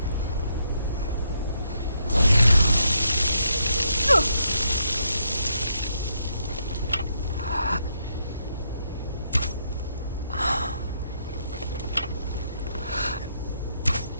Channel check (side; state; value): both; inverted; correlation -0.77